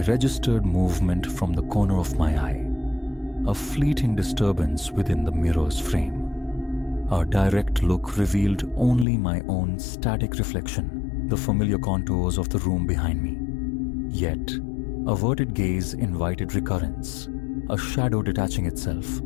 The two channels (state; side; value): drops out; right; at 9.1 s